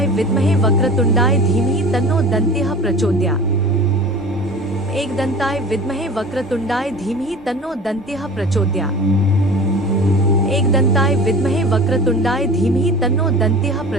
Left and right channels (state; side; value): normal; both; correlation 0.39